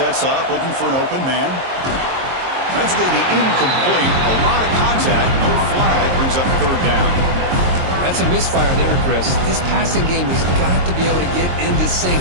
up, looking for an open man. That's going to be incomplete. A lot of contact, no flag, brings up third down. That's a misfire there, Chris. This passing game has got to be able to get into sync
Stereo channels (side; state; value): left; late; 22 ms